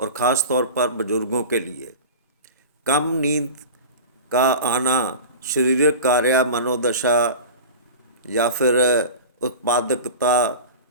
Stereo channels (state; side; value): inverted; both; correlation -0.33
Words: ख़ास तौर पर बुजुर्गों के लिए। कम नींद का आना शारीरिक कार्य, मनोदशा या फिर उत्पादकता